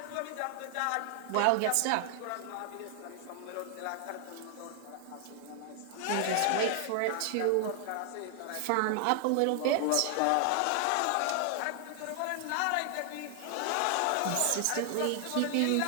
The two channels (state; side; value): different; both; correlation 0.00